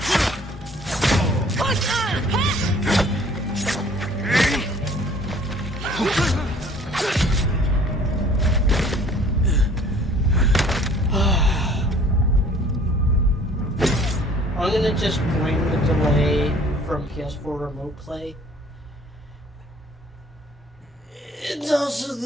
I'm gonna just bring the delay from PS4 Remote Play. It's also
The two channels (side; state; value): both; normal; correlation 0.54